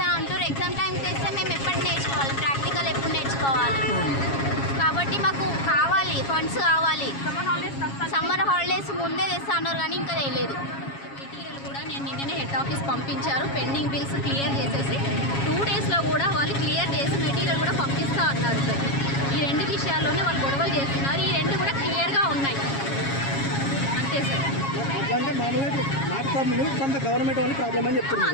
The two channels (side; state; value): right; late; 7.3 ms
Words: అంటారు. ఎగ్జామ్ టైం తెస్తే మేము ఎప్పుడు నేర్చుకోవాలి, ప్రాక్టికల్ ఎప్పుడు నేర్చుకోవాలి? కాబట్టి మాకు కావాలి, ఫండ్స్ కావాలి. సమ్మర్ హాలిడేస్ ముందే తెస్తా అన్నారు కానీ ఇంకా తెలియదు. మెటీరియల్ కూడా నేను నిన్ననే హెడ్ ఆఫీస్ పంపించారు, పెండింగ్ బిల్స్ క్లియర్ చేసేసి 2 daysలో కూడా వాళ్ళు క్లియర్ చేసి మెటీరియల్ కూడా పంపిస్తా అన్నారు సార్. ఈ 2 విషయాల్లోనే వాళ్ళు గొడవలు చేస్తున్నారు, ఈ 2 కూడా క్లియర్గా ఉన్నాయి అంతే సార్.